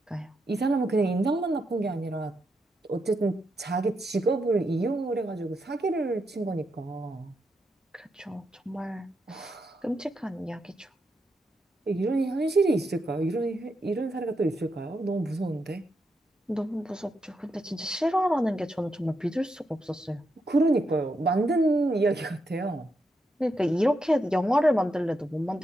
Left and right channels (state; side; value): normal; both; correlation 0.83